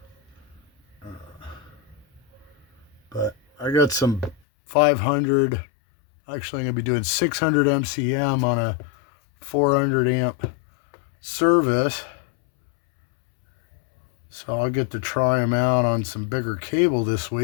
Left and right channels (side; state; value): right; drops out; at 4.4 s